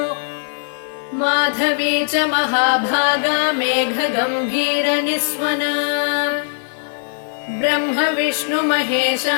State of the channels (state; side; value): silent; right; digital silence